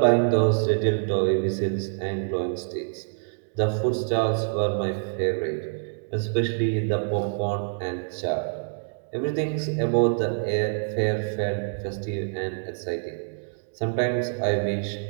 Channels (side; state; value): left; silent; digital silence